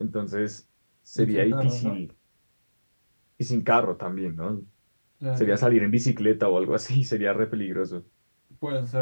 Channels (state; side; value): inverted; both; correlation -1.00